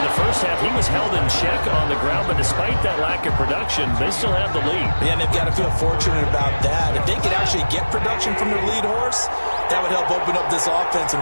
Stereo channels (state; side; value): inverted; both; correlation -1.00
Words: the first half, he was held in check on the ground, but despite that lack of production, they still have the lead. Yeah, and they've got to feel fortunate about that. If they could actually get production from their lead horse, that would help open up this offense